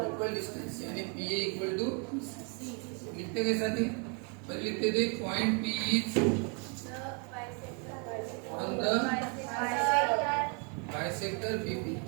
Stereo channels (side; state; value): left; quieter; 36.5 dB